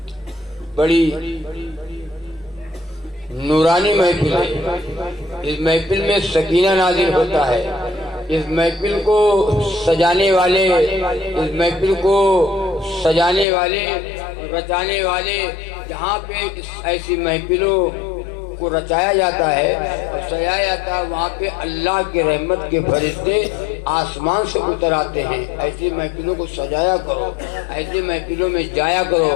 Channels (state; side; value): drops out; right; at 13.5 s